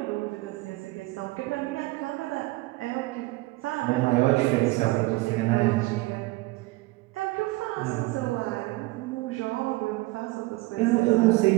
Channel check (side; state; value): left; quieter; 21.2 dB